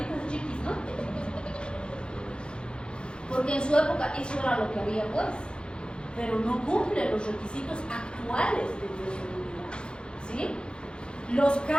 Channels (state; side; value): late; right; 0.052 ms